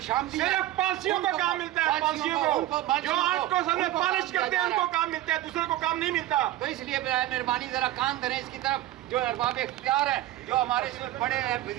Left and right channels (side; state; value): left; quieter; 14.7 dB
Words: सिर्फ पांसियों को काम मिलता है, पांसियों को जो आर्ट को सामने पॉलिश करते हैं उनको काम मिलता है, दूसरे को काम नहीं मिलता। तो इसलिए मेहरबानी जरा कान धरें इसकी तरफ। जो अरबाब इख्तियार हैं, जो हमारे इसमें बड़े हैं,